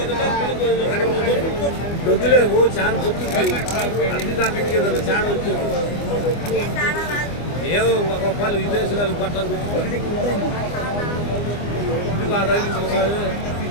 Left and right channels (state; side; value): late; right; 24 ms